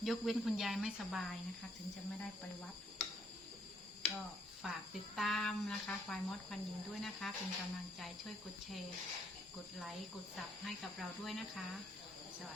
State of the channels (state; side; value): normal; both; correlation 0.70